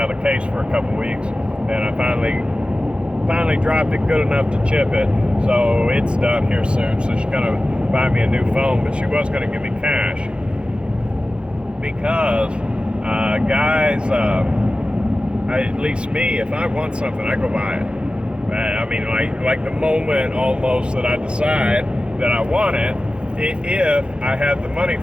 of the case for a couple weeks, and I finally dropped it good enough to chip it, so it's done here soon. So she's going to buy me a new phone, but she was going to give me cash because guys, at least me, if I want something, I go buy it. I mean, like the moment almost that I decide that I want it, if I have the money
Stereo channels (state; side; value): late; left; 0.056 ms